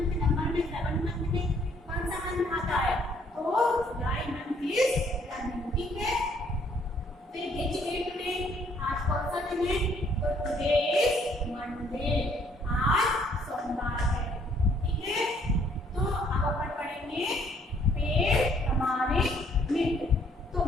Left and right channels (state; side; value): normal; both; correlation 0.64